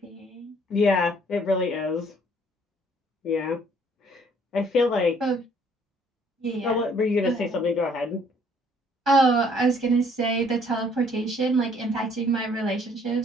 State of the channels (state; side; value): normal; both; correlation 0.61